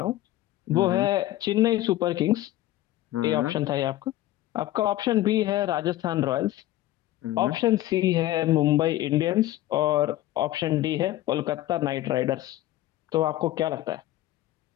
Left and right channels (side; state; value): right; quieter; 14.9 dB